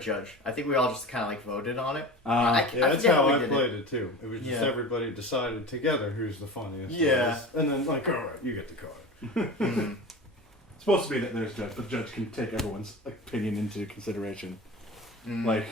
I think we all just kind of like voted on it. Yeah, that's forget how we I did played it too. It was just Yeah. everybody decided together who's the funniest. Yeah. And then like, all right, you get the card. Mhm. It's supposed to be that there's judge, but the judge can take everyone's opinion into consideration. Mhm. Like,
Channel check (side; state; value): both; normal; correlation 0.32